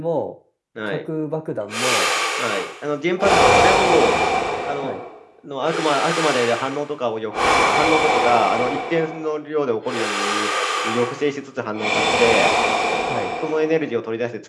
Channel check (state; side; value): identical; both; correlation 1.00